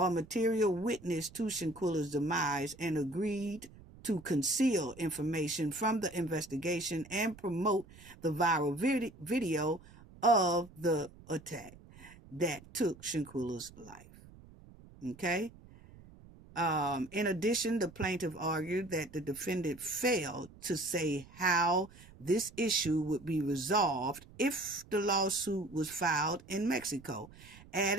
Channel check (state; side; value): noise; right; rumble, 21 dB below the sound